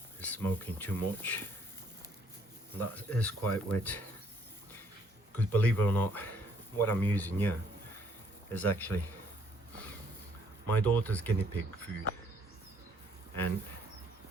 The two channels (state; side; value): normal; both; correlation 0.65